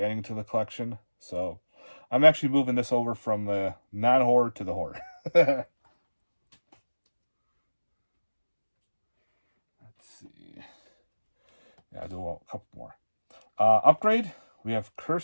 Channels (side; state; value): both; inverted; correlation -1.00